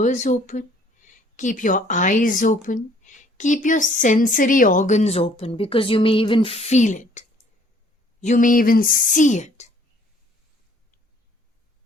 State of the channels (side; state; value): both; normal; correlation 0.59